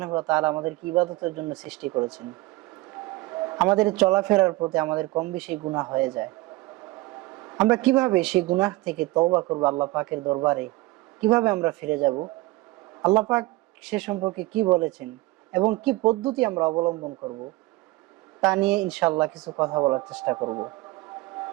ওয়া তাআলা আমাদেরকে ইবাদতের জন্য সৃষ্টি করেছেন। আমাদের চলাফেরার পথে আমাদের কম বেশি গুনাহ হয়ে যায়। আমরা কিভাবে সেই গুনাহ থেকে তওবা করব আল্লাহ পাকের দরবারে, কিভাবে আমরা ফিরে যাব, আল্লাহ পাক সে সম্পর্কে কি বলেছেন এবং কি পদ্ধতি আমরা অবলম্বন করব, তা নিয়ে ইনশাআল্লাহ কিছু কথা বলার চেষ্টা করব।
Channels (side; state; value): left; quieter; 20.4 dB